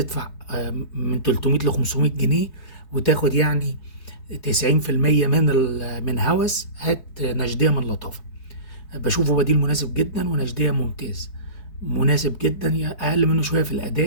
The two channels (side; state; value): right; late; 4.7 ms